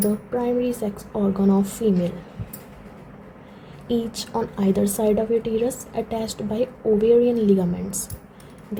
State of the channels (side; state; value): both; identical; correlation 1.00